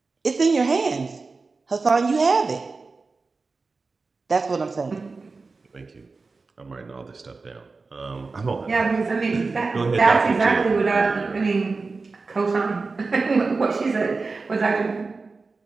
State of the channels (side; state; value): left; quieter; 4.0 dB